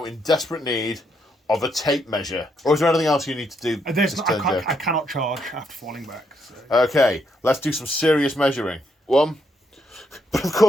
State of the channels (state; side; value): normal; both; correlation 0.76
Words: in desperate need of a tape measure. Or is there anything else you need to do? I cannot charge after falling back. So. Okay, let's do some serious measuring. 1. But of